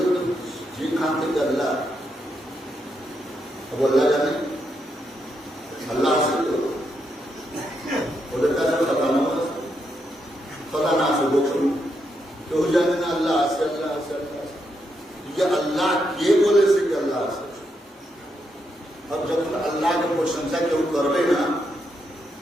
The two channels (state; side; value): normal; both; correlation 0.81